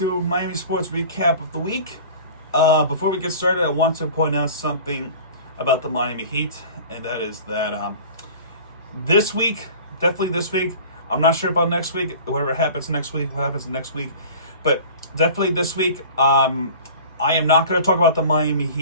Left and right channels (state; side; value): inverted; both; correlation -0.41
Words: Miami Sports Recap of the Week. Before we get started, I want to point out something about the Miami Heat, and that is that this week, definitely this week, I'm not sure about next week, whatever happens next week, but definitely this week, I am not going to talk about the Miami